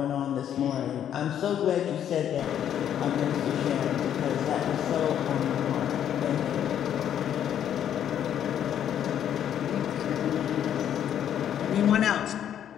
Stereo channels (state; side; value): quieter; right; 9.8 dB